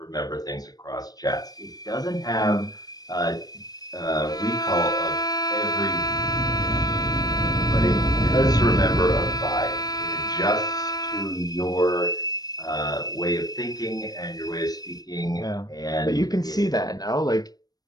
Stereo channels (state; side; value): late; right; 0.19 ms